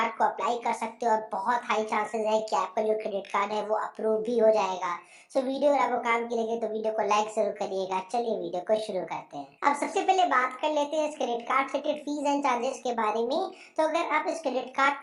को अप्लाई कर सकते हो और बहुत हाई चांसेस है कि आपका जो क्रेडिट कार्ड है वो अप्रूव भी हो जाएगा। सो वीडियो अगर आपको काम की लगे तो वीडियो को लाइक जरूर करिएगा। चलिए वीडियो को शुरू करते हैं। अब सबसे पहले बात कर लेते हैं इस क्रेडिट कार्ड से रिलेटेड फीस एंड चार्जेस के बारे में। तो अगर आप इस क्रेडिट कार्ड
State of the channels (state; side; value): identical; both; correlation 1.00